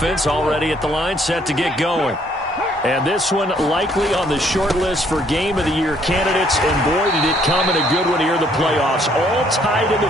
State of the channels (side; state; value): both; normal; correlation 0.65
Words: already at the line, set to get going. And this one likely on the short list for Game of the Year candidates. And boy, did it come in a good one here in the playoffs. All tied in the